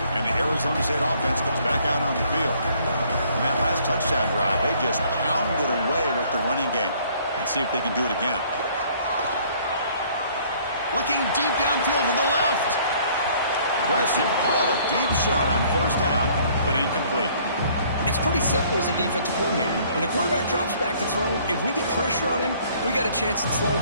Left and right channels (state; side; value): inverted; both; correlation -0.59